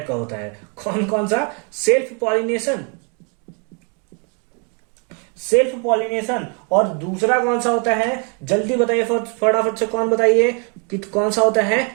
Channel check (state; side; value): quieter; left; 35.9 dB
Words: का होता है। कौन कौन सा? सेल्फ पॉलिनेशन और दूसरा कौन सा होता है? जल्दी बताइए फटाफट से, कौन बताइए कि कौन सा होता है?